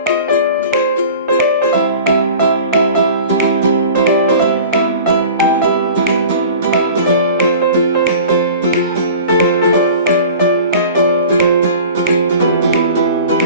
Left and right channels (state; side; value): inverted; both; correlation -0.41